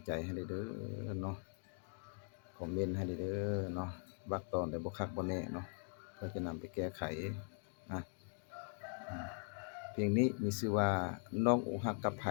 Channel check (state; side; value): silent; right; 50 dB below the other